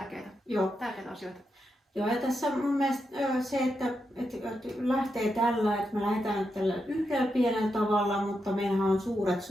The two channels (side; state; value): both; normal; correlation 0.85